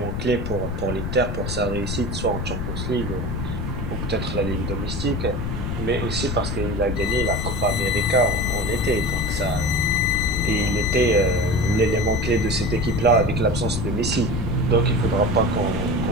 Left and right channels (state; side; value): noise; left; rumble, 3 dB below the sound